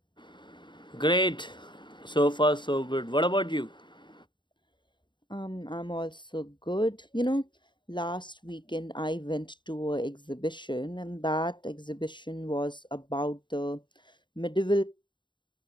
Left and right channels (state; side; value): late; right; 0.23 ms